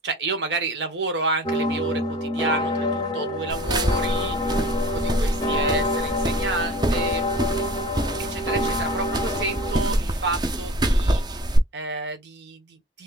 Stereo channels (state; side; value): normal; both; correlation 0.42